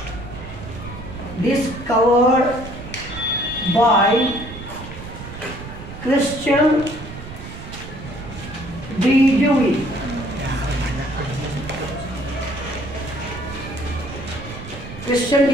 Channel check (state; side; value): noise; right; rumble, 12 dB below the sound